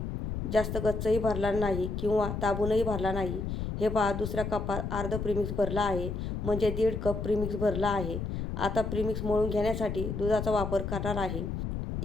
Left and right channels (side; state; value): left; noise; rumble, 4 dB below the sound